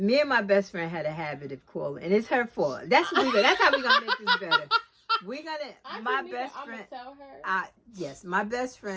and my best friend had a habit of calling, and it's her fault. That's how we're gonna make this better. My best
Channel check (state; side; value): identical; both; correlation 1.00